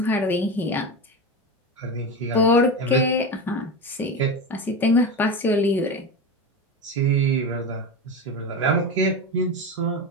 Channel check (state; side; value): normal; both; correlation 0.21